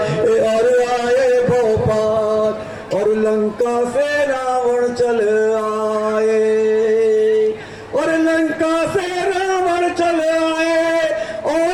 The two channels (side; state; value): both; identical; correlation 1.00